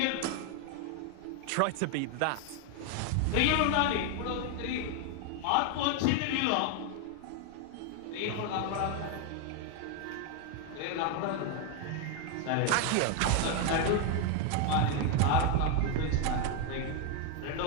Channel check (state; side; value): different; both; correlation 0.01